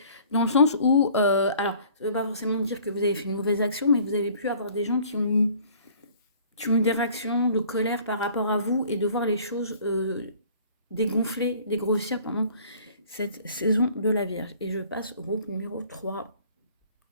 Dans le sens où, alors, ça ne veut pas forcément dire que vous avez fait une mauvaise action, mais vous avez pu avoir des gens qui ont eu des réactions de colère par rapport à vous et de voir les choses dégonfler, dégrossir pendant cette saison de la Vierge. Et je passe au groupe numéro 3.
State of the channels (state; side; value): inverted; both; correlation -0.53